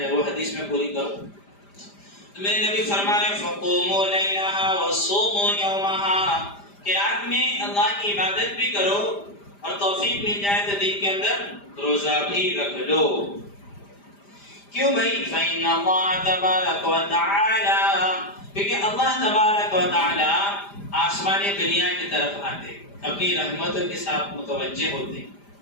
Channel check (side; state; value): right; late; 5.0 ms